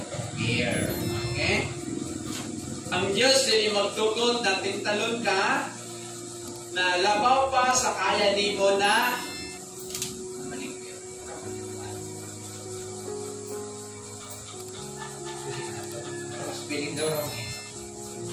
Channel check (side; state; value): both; identical; correlation 1.00